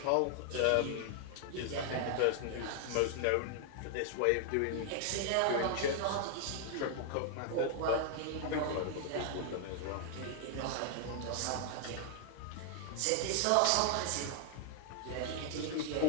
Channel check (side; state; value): both; different; correlation 0.00